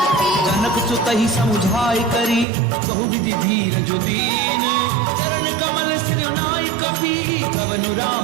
जनक सुतहि समुझाई करी बहु विधि धीरज दीन चरण कमल सिर नाई कपि कवनु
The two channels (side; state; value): left; drops out; at 2.5 s